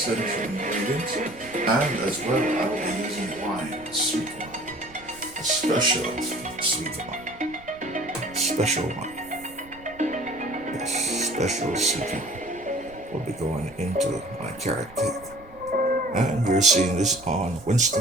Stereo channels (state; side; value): noise; right; rumble, 22 dB below the sound